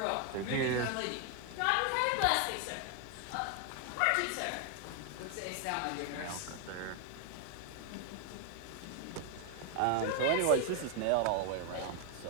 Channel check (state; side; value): different; both; correlation 0.01